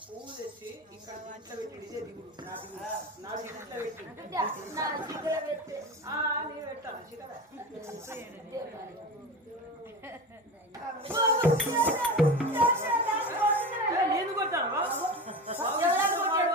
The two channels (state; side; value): normal; both; correlation 0.28